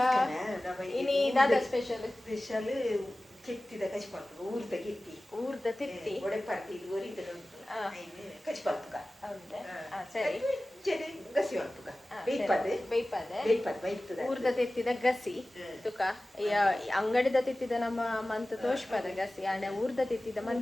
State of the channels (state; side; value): normal; both; correlation 0.97